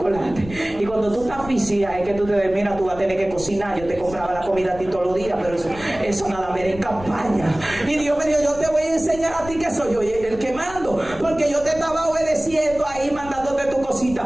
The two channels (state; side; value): noise; left; rumble, 15 dB below the sound